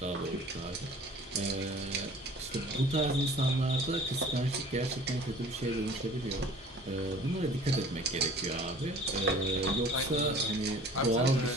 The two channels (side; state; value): both; normal; correlation 0.48